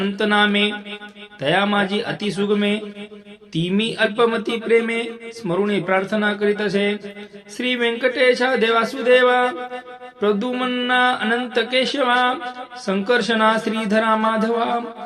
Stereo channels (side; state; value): both; identical; correlation 1.00